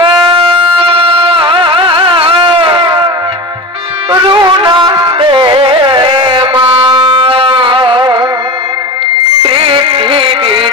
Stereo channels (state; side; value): normal; both; correlation 0.28